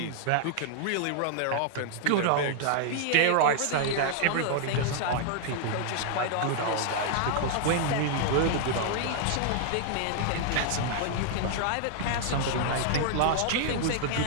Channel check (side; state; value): both; different; correlation -0.01